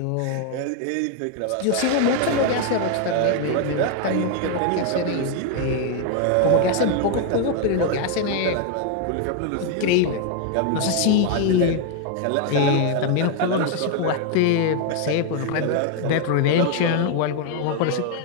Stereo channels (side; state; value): both; different; correlation 0.01